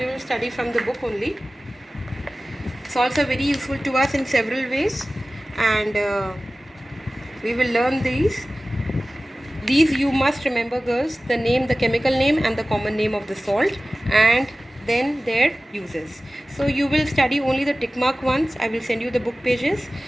will study from the book only. Salts are very useful to us in several ways, and we will learn these. These you must remember girls, the name, the chemical name and the common name of the salt, and then their uses. So you will study only the tick mark ones. I will send you the book pages.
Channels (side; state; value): both; normal; correlation 0.97